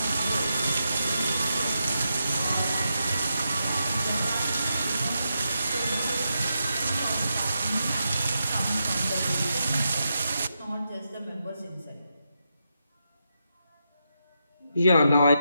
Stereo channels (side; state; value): both; inverted; correlation -0.85